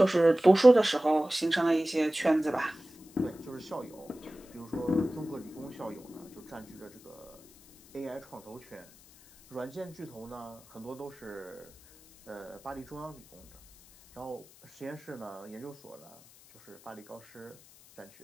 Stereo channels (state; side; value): noise; left; hiss, 24 dB below the sound